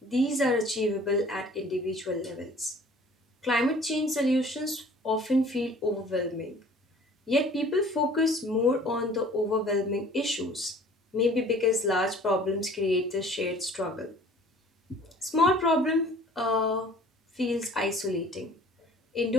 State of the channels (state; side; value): normal; both; correlation 0.50